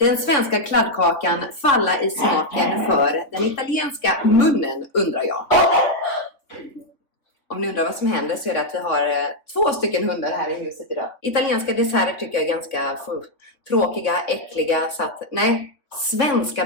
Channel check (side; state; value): right; late; 3.5 ms